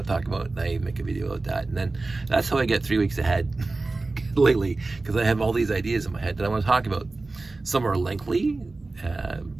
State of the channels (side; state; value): left; quieter; 3.4 dB